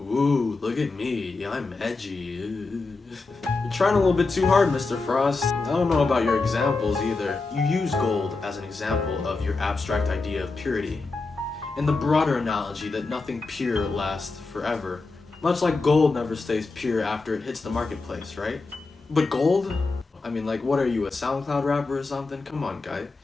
Ooh, look at me, I'm edgy. You're trying a little bit too hard, Mr. Frost. I don't know about your examples either. You use gold as an example of your abstract idea of purity, in the broader analogy that nothing pure lasts forever. Much like gold never stays pure after it hits the marketplace, right? But gold? I mean, like, what are you, a SoundCloud rapper or something? Come on, guy.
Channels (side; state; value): right; quieter; 3.8 dB